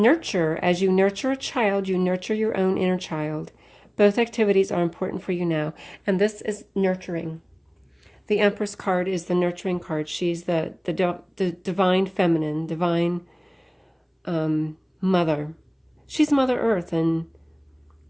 As you nurture a child, you nurture your own inner child. Both activities are important for you now, and this is nurturing. The Empress card is the nurturing card. She's the divine feminine, divine mother. She's Mother Earth and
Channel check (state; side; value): identical; both; correlation 1.00